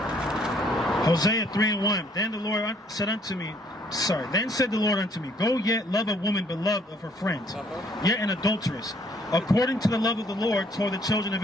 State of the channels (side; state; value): both; normal; correlation 0.64